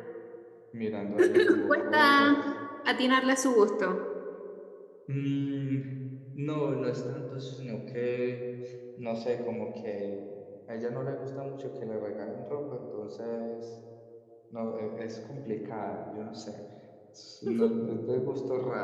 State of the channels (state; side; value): identical; both; correlation 1.00